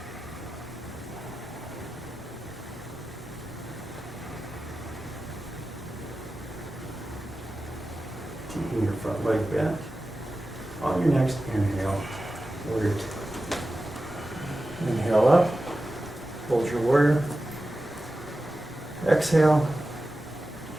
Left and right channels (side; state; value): both; normal; correlation 0.94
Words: Keeping your front leg bent. On your next inhale, warrior two. Inhale up, hold your warrior. Exhale.